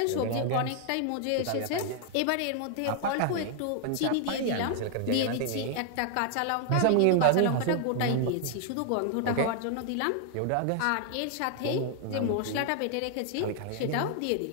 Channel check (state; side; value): different; both; correlation 0.00